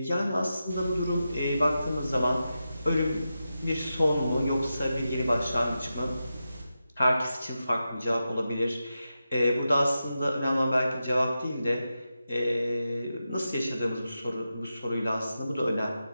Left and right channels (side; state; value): both; inverted; correlation -0.90